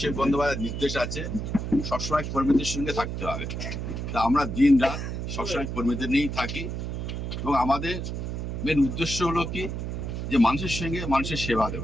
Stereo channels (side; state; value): right; noise; hum, 4 dB below the sound